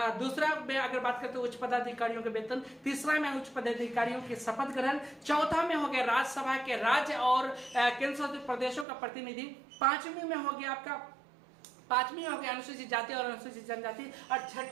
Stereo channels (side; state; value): left; drops out; at 8.8 s